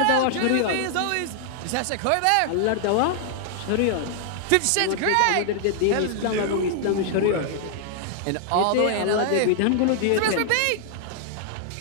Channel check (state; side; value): different; both; correlation -0.01